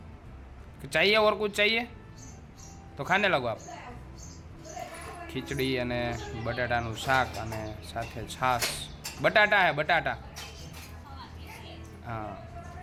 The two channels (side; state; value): both; identical; correlation 1.00